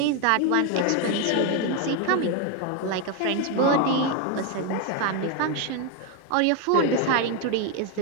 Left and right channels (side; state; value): both; different; correlation 0.01